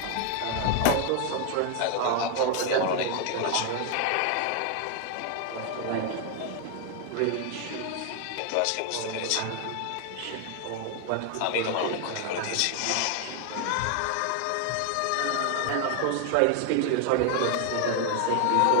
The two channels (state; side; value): different; both; correlation 0.00